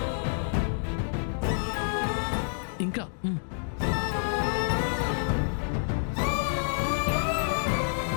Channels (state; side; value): silent; right; digital silence